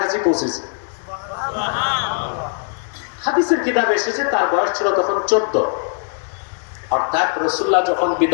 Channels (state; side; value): silent; right; 66 dB below the other